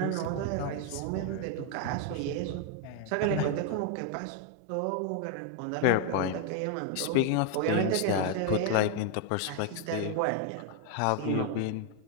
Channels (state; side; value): different; both; correlation 0.01